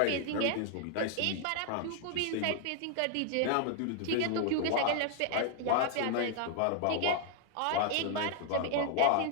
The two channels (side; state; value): both; different; correlation 0.00